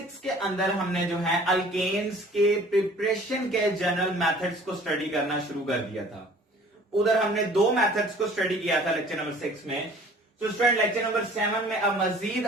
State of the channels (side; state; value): both; normal; correlation 0.50